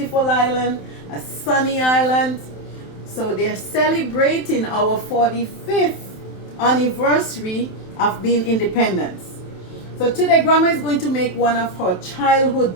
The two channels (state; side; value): late; right; 27 ms